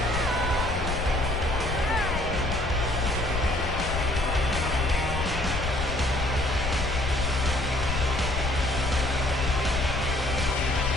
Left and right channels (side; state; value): left; noise; rumble, 3 dB below the sound